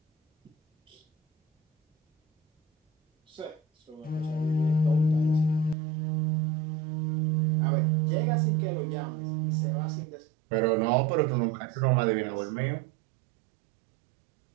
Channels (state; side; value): drops out; left; at 5.8 s